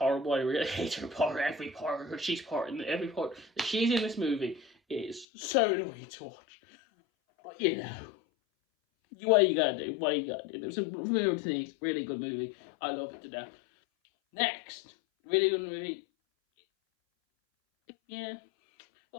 I really hate her part. Every part that she's in this movie is so annoying to watch. But what you gotta do? There's some weird things. Really good movie. I love it to death. Next, really good movie. Yeah.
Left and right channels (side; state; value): right; drops out; at 5.2 s